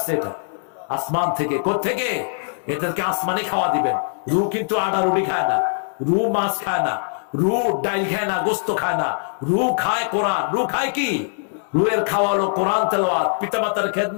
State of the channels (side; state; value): right; silent; digital silence